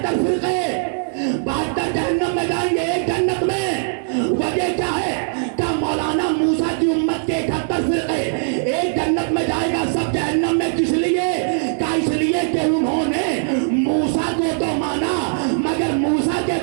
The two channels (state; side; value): silent; left; digital silence